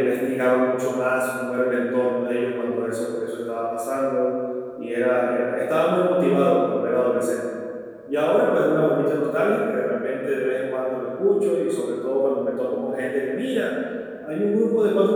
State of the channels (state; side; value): identical; both; correlation 1.00